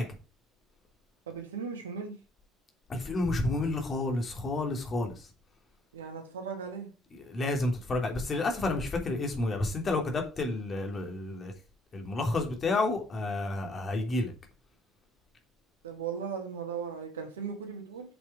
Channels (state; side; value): normal; both; correlation 0.64